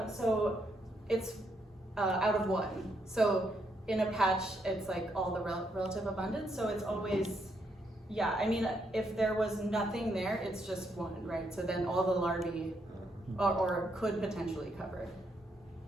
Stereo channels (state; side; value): normal; both; correlation 0.77